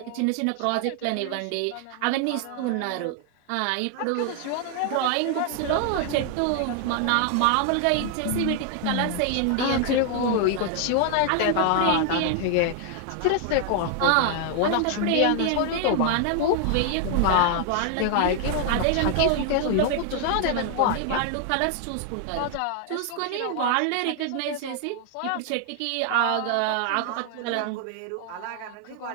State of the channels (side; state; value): both; different; correlation 0.00